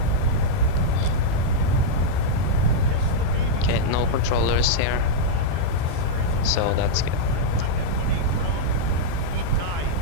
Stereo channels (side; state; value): both; different; correlation -0.03